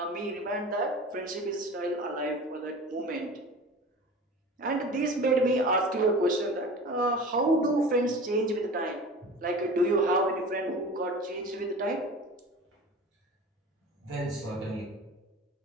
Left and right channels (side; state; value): both; normal; correlation 0.37